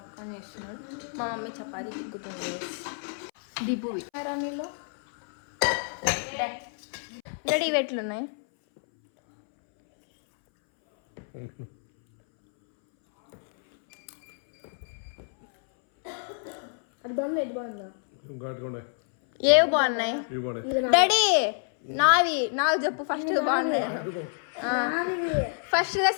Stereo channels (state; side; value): silent; right; 60 dB below the other